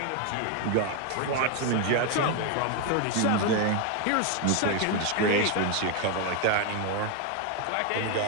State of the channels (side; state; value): both; different; correlation 0.01